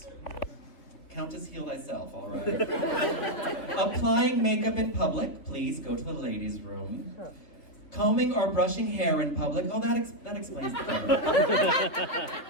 Countess, heal thyself, all right. Applying makeup in public. Please go to the ladies' room. Combing or brushing hair in public. Oh, that explains the cover.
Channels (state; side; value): late; right; 3.4 ms